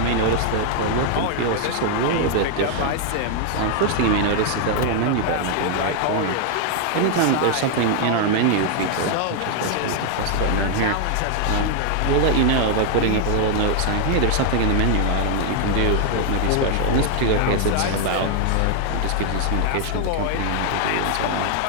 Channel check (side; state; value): both; different; correlation 0.00